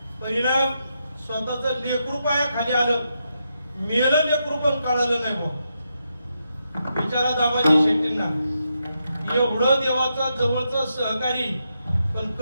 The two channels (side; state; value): both; inverted; correlation -0.83